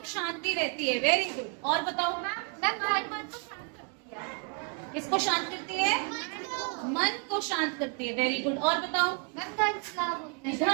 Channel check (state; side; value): quieter; left; 36.4 dB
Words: शांति रहती है। Very good. और बताओ, किसको शांत करती है? मन को शांत करती है। Very good. और बताओ, धन